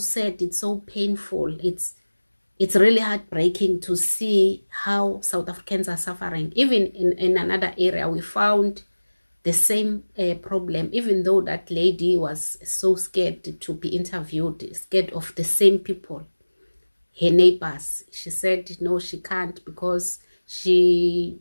It's so painful. It's really heartbreaking to see how South Africans are suffering. Even in another area, we found the same problem, even though that lady was so scared to be interviewed, scared of the same people, her neighbors. She said no, she can't, because she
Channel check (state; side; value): inverted; both; correlation -1.00